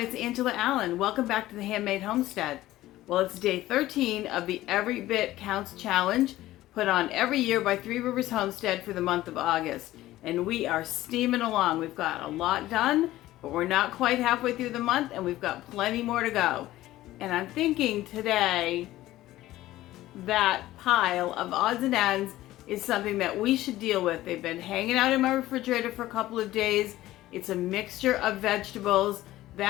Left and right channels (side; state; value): right; quieter; 15.7 dB